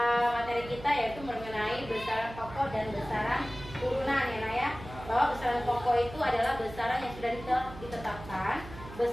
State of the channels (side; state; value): right; noise; hum, 14 dB below the sound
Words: materi kita yaitu mengenai besaran pokok dan besaran turunan ya Nak ya. Bahwa besaran pokok itu adalah besaran yang sudah ditetapkan.